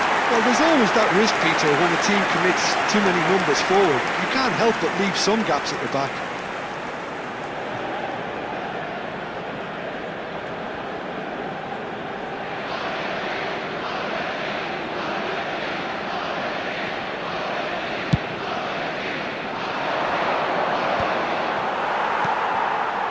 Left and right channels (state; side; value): identical; both; correlation 1.00